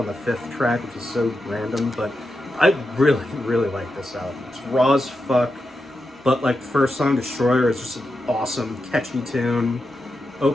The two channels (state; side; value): normal; both; correlation 0.88